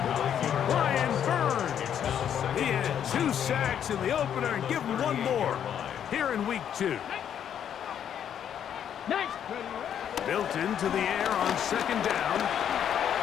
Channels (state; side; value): quieter; right; 9.2 dB